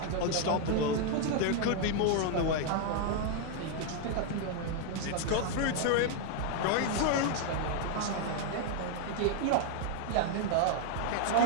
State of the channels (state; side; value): different; both; correlation 0.00